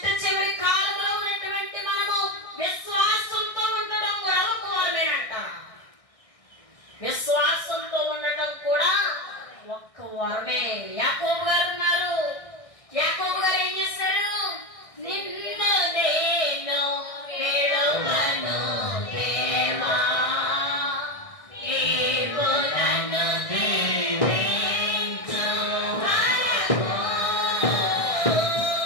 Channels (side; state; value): right; late; 1.6 ms